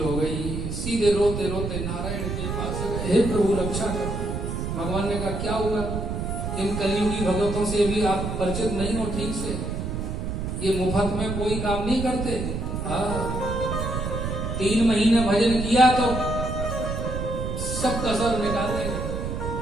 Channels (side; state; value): right; noise; rumble, 3 dB below the sound